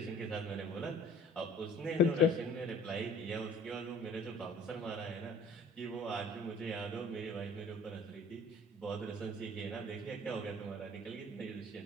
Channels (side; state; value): both; normal; correlation 0.50